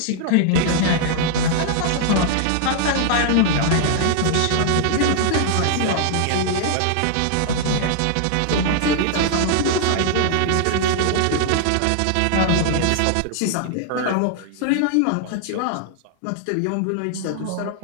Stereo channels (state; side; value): different; both; correlation -0.01